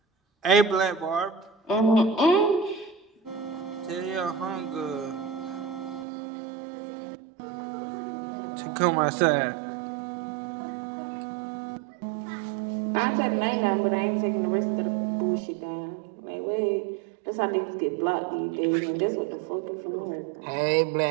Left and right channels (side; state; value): left; drops out; at 6.1 s